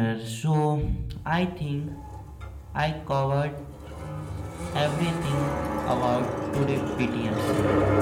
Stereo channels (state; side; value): identical; both; correlation 1.00